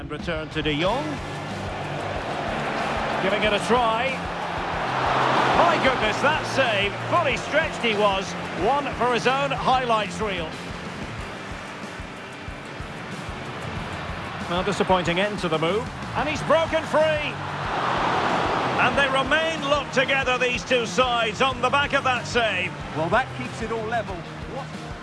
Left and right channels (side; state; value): both; identical; correlation 1.00